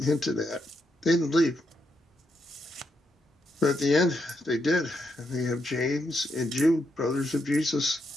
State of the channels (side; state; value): both; normal; correlation 0.81